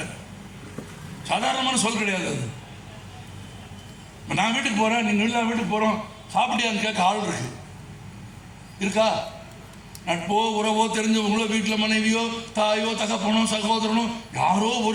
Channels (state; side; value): identical; both; correlation 1.00